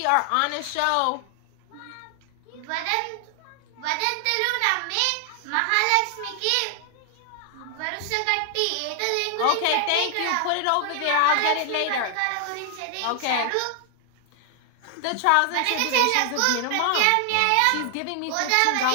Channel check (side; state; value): both; different; correlation 0.00